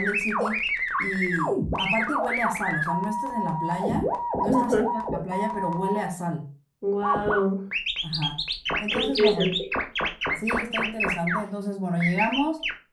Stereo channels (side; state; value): both; identical; correlation 1.00